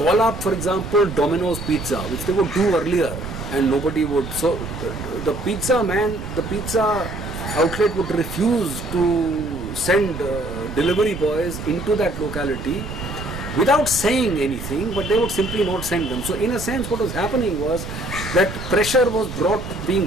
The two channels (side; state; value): right; noise; rumble, 9 dB below the sound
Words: up, for example, Domino's Pizza, which they would do earlier, and nobody would, so the pizza outlet would refuse to send delivery boys into that locality without saying anything, but they would simply not send them. So in a sense, what was happening was that pressure was being